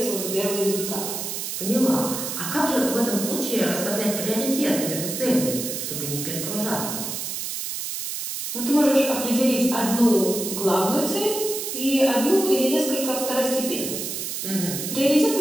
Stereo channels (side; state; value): right; noise; hiss, 5 dB below the sound